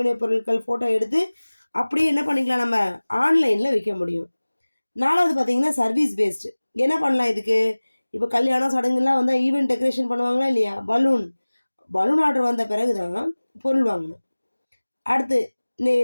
பொருட்கள் ஃபோட்டோ எடுத்து அப்படியே என்ன பண்ணிக்கலாம், நம்ம ஆன்லைனில் விற்க முடியும். 4வது பார்த்தீங்கன்னா சர்வீஸ் பேஸ்டு. என்ன பண்ணலாம் இதுக்கு? இப்போ கல்யாணம் சடங்குலாம் வந்தால் ஈவெண்ட் டெக்கரேஷன் பண்ணுவாங்களா இல்லையா? பலூன் ஆர்டர் வந்த பிறகு தான் பொருள் வாங்கணும். அடுத்து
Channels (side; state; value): both; inverted; correlation -1.00